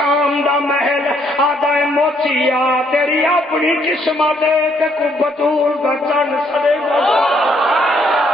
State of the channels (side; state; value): both; normal; correlation 0.69